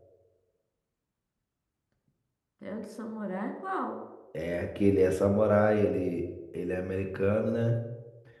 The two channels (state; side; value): identical; both; correlation 1.00